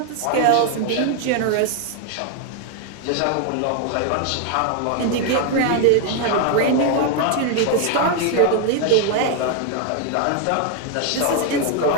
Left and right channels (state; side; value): different; both; correlation 0.01